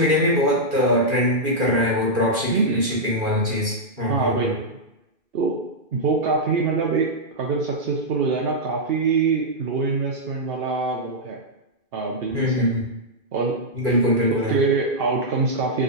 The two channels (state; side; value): late; left; 2.4 ms